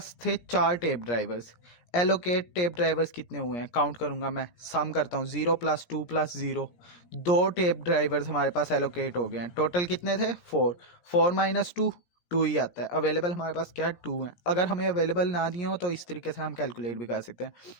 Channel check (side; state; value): right; late; 17 ms